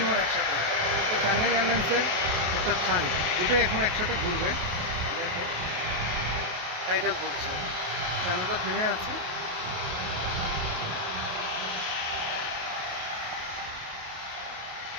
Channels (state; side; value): late; left; 28 ms